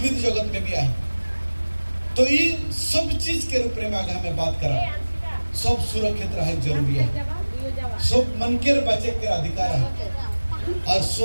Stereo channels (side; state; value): both; inverted; correlation -1.00